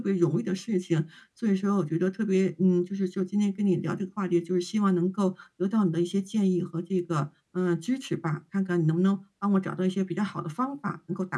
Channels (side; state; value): both; identical; correlation 1.00